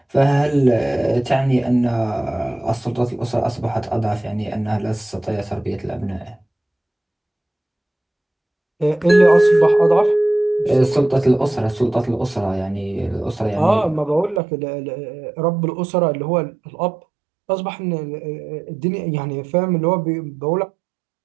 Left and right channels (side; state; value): left; drops out; at 14.4 s